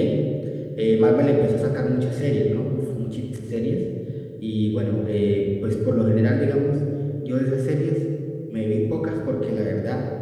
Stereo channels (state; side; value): identical; both; correlation 1.00